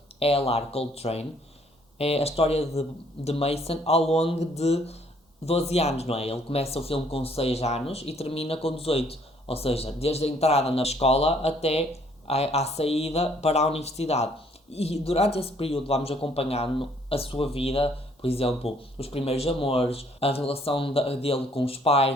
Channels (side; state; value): both; normal; correlation 0.63